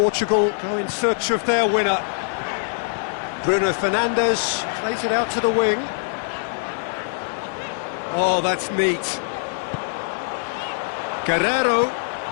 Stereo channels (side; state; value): right; silent; 62 dB below the other